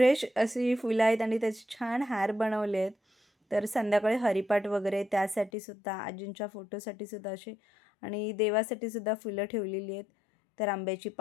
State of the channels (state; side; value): drops out; right; at 5.5 s